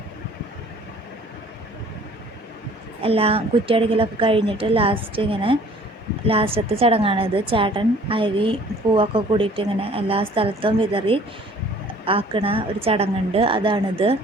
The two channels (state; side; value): normal; both; correlation 0.53